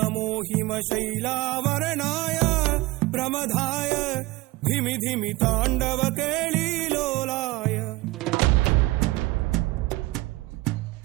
హిమశైలావరణాయ ప్రమదాయ ధిమి ధిమి తాండవ కేళీలోలాయ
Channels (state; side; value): quieter; left; 20.4 dB